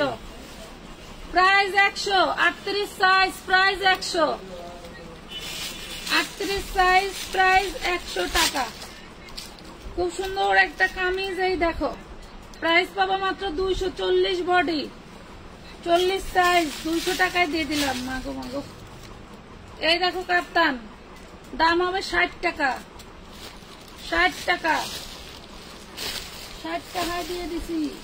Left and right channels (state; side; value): identical; both; correlation 1.00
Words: price 100, 38 size, price 100, 38 size, price 100 টাকা। খুব সুন্দর একটা কামিজ, এই দেখো, প্রাইস পাবা মাত্র 240, বডি 40 সাইজ, 200 টাকায় দিয়ে দিলাম। মাগো মাগো, এই দেখো কাপ্তান, দাম হবে 60 টাকা, 60 টাকা, 60 টাকায় দিয়ে দিছি।